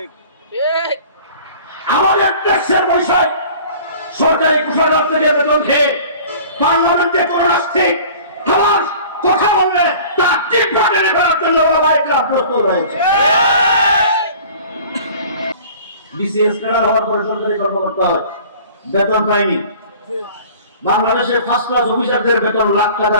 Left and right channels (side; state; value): both; inverted; correlation -0.46